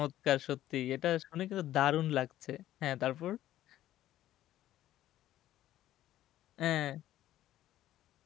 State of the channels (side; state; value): right; quieter; 13.4 dB